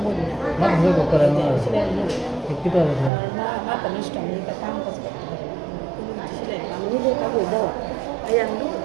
बोल मत हो को करे सिलाई नहीं कितना है ना mata nista ni ka काम कर सिलाई काम नहीं दे का बोल दो ayam tu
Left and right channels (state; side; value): drops out; left; at 3.1 s